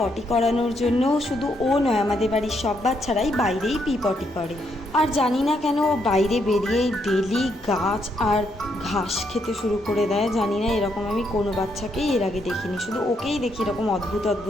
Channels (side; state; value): both; normal; correlation 0.76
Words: করানোর জন্য। শুধু ও নয়, আমাদের বাড়ির সব বাচ্চারাই বাইরেই পি পটি করে। আর জানি না কেন ও বাইরে বেরিয়েই ডেলি গাছ আর ঘাস খেতে শুরু করে দেয়। জানি না, এরকম আমি কোনো বাচ্চাকেই এর আগে দেখিনি, শুধু ওকেই দেখি এরকম অদ্ভুত